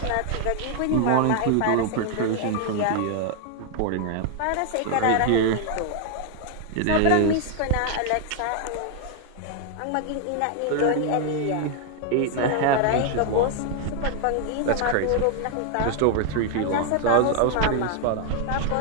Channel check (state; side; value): different; both; correlation 0.00